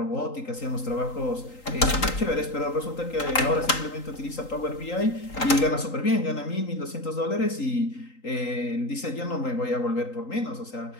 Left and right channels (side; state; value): right; late; 3.8 ms